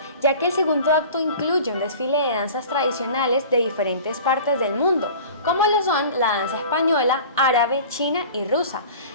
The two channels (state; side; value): inverted; both; correlation -0.41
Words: ya que el segundo acto incluye un desfile de danzas tradicionales de diferentes partes del mundo, como lo son la danza española, árabe, china y rusa,